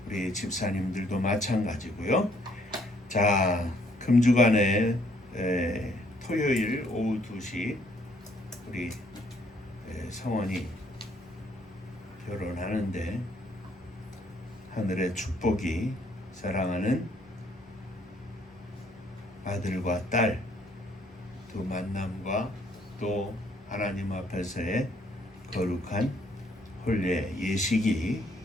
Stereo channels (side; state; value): both; normal; correlation 0.66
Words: 우리 집사님들도 마찬가지고요. 자, 금주간에 토요일 오후 2시 우리 성원이 결혼하는데 하늘의 축복이 사랑하는 아들과 딸 두 만남과 또 하나님 앞에서의 거룩한 혼례 예식이